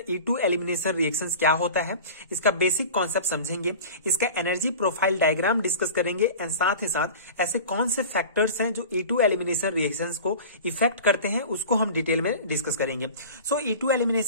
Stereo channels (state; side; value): inverted; both; correlation -0.36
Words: E2 एलिमिनेशन रिएक्शंस क्या होता है, इसका बेसिक कॉन्सेप्ट समझेंगे, इसका एनर्जी प्रोफाइल डायग्राम डिस्कस करेंगे एंड साथ ही साथ ऐसे कौन से फैक्टर्स हैं जो E2 एलिमिनेशन रिएक्शंस को इफेक्ट करते हैं, उसको हम डिटेल में डिस्कस करेंगे। सो E2